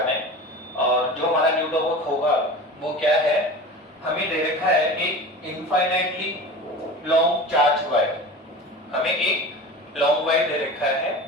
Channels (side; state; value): both; normal; correlation 0.34